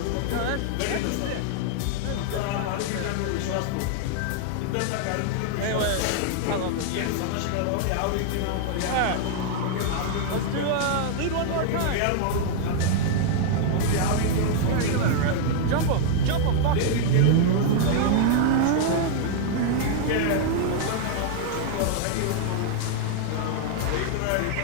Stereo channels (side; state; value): both; different; correlation -0.01